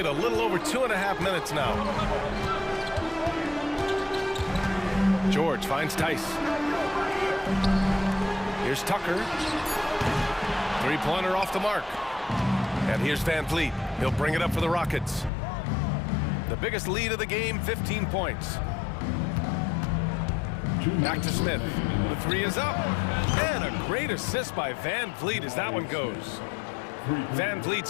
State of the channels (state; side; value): drops out; right; at 15.3 s